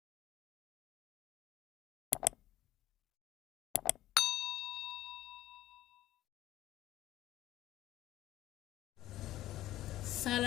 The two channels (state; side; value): quieter; right; 14.6 dB